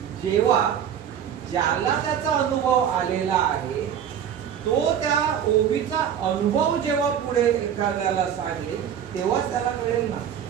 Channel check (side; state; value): left; quieter; 8.9 dB